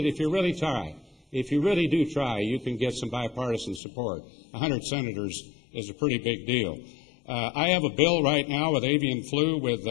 that if you really try, if you really do try, you can get some bipartisan support. 100 senators is a pretty big deal. I have a bill right now with avian flu with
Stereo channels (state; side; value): drops out; right; at 3.8 s